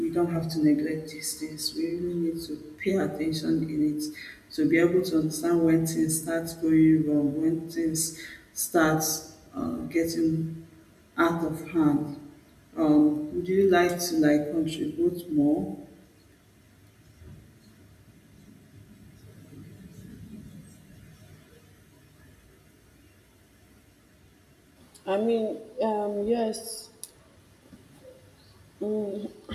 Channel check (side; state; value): both; identical; correlation 1.00